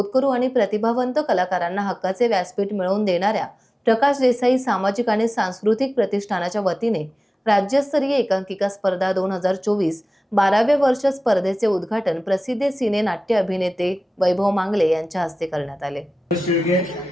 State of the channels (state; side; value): normal; both; correlation 0.97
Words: आणि प्रतिभावंत कलाकारांना हक्काचे व्यासपीठ मिळवून देणाऱ्या प्रकाश देसाई सामाजिक आणि सांस्कृतिक प्रतिष्ठानाच्या वतीने राज्यस्तरीय एकांकिका स्पर्धा 2024 12व्या वर्ष स्पर्धेचे उद्घाटन प्रसिद्ध सिने नाट्य अभिनेते वैभव मांगले यांच्या हस्ते करण्यात आले।